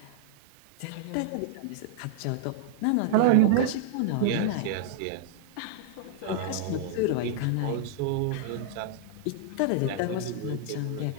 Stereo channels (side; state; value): both; different; correlation -0.01